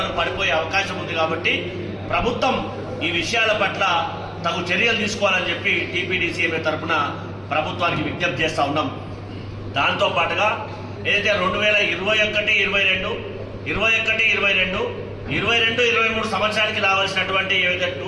పడిపోయే అవకాశం ఉంది. కాబట్టి ప్రభుత్వం ఈ విషయాల పట్ల తగు చర్యలు తీసుకోవాలని చెప్పి టీపీడీసీఎంఏ తరఫున ప్రభుత్వానికి విజ్ఞప్తి చేస్తూ ఉన్నాం. దాంతో పాటుగా ఏదైతే 2021, 22, 23 సంవత్సరానికి రావాల్సినటువంటి ఏవైతే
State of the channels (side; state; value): both; identical; correlation 1.00